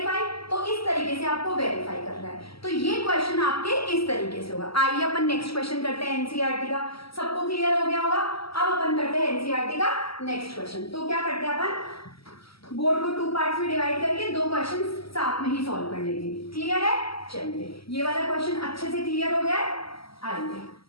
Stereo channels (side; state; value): right; late; 0.75 ms